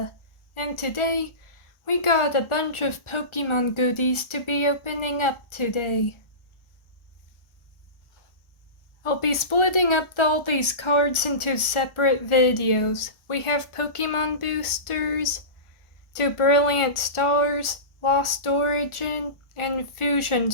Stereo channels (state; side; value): late; right; 1.4 ms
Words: and today we got a bunch of Pokemon goodies to be opening up today. I'll be splitting up all these cards into separate videos. We have Pokemon Boosters, 2 Brilliant Stars, Lost Origin, and Fusion